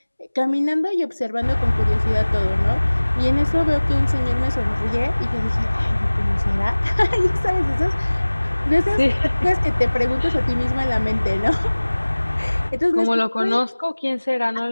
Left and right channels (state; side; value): inverted; both; correlation -1.00